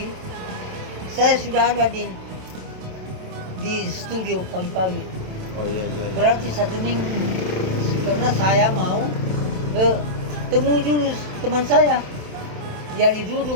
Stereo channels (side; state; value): left; late; 27 ms